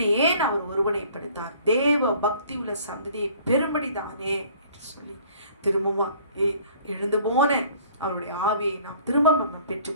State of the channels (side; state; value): both; inverted; correlation -0.53